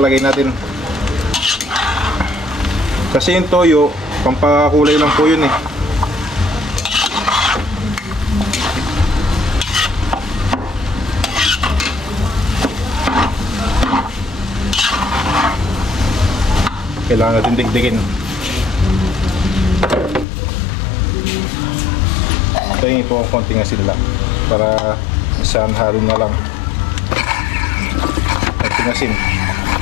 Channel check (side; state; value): right; drops out; at 20.2 s